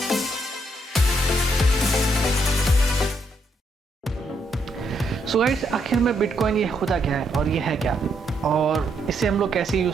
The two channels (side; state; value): both; normal; correlation 0.76